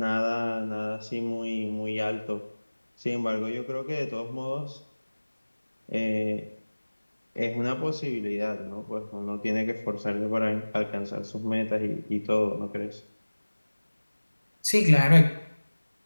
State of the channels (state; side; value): inverted; both; correlation -1.00